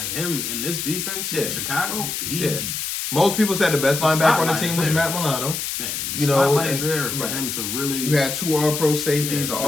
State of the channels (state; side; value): noise; left; hiss, 4 dB below the sound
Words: him in this defense in Chicago, most people said the best linebacker on the team was Matt Milano. Yeah, the spotlight is there for him to really... You had 2 All-Pro safeties, an